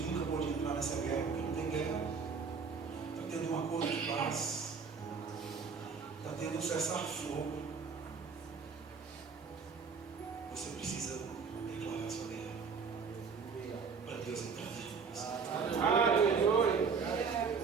pode entrar nessa guerra, porque não tem guerra. Está tendo um acordo de paz. Está tendo um cessar-fogo. Você precisa declarar sua guerra para Deus entrar dentro de você.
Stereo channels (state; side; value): quieter; left; 5.5 dB